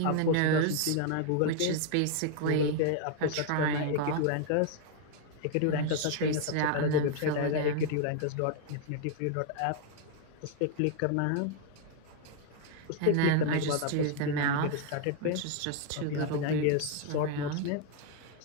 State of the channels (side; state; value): both; different; correlation 0.00